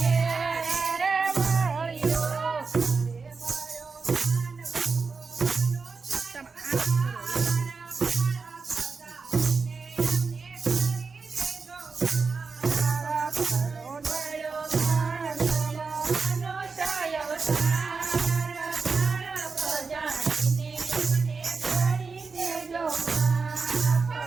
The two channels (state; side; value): quieter; left; 4.6 dB